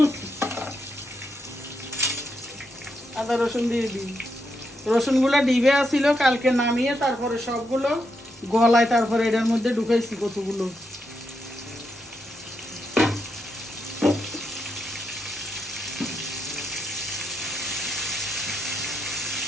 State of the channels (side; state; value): both; normal; correlation 0.82